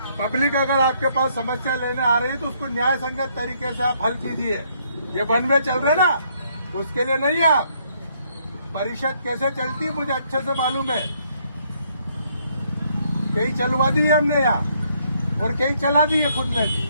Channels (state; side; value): inverted; both; correlation -0.70